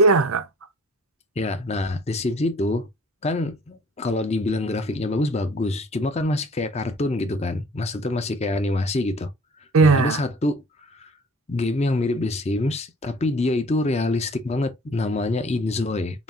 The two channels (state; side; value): normal; both; correlation 0.49